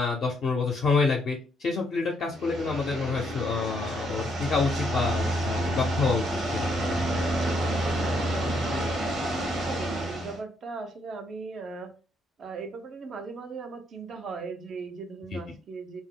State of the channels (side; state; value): both; normal; correlation 0.73